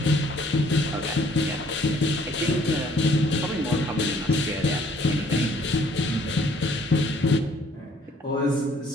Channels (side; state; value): both; normal; correlation 0.61